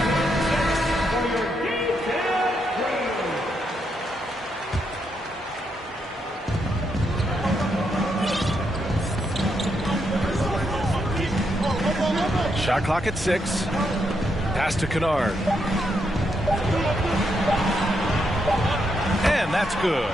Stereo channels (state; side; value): normal; both; correlation 0.80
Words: Shot clock at 6. Pass to Kennard. And that's good.